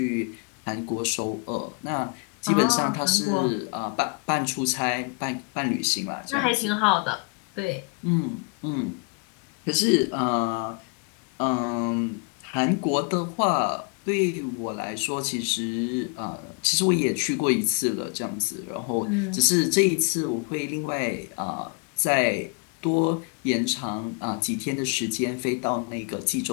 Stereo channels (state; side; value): quieter; right; 34.4 dB